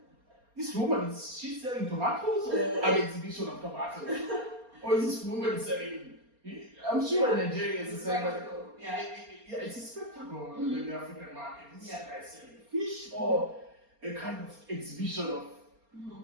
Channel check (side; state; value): left; late; 4.3 ms